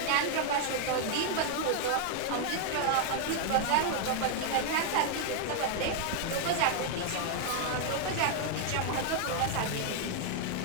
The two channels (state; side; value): different; both; correlation 0.00